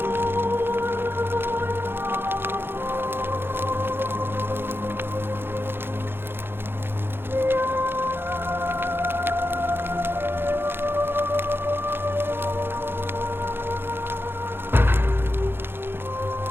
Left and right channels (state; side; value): late; left; 0.10 ms